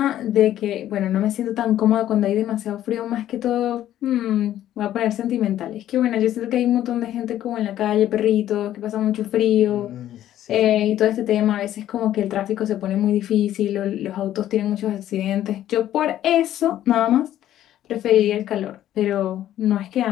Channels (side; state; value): right; quieter; 12.3 dB